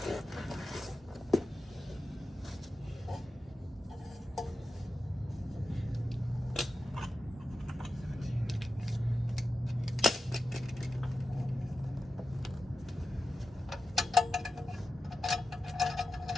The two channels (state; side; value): normal; both; correlation 0.91